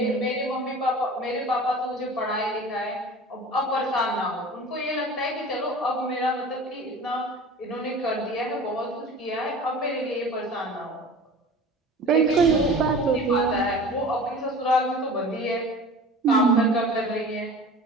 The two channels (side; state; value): both; normal; correlation 0.39